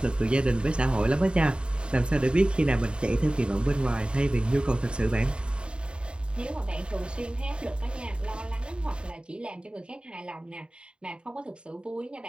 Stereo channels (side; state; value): left; late; 0.052 ms